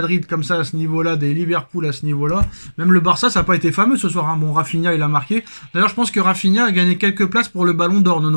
comme ça à ce niveau-là, des Liverpool à ce niveau-là, même le Barça, ça n'a pas été fameux ce soir. Hein. Bon, Rafinha, il a marqué. D'ailleurs, je pense que Rafinha a gagné quelques places pour le Ballon d'Or,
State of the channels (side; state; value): both; inverted; correlation -1.00